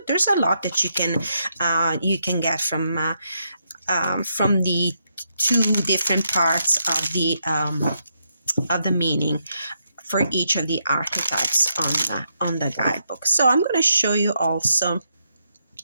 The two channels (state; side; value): inverted; both; correlation -0.79